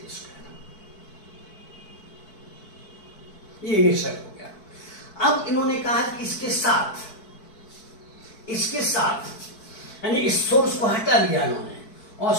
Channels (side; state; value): right; late; 4.6 ms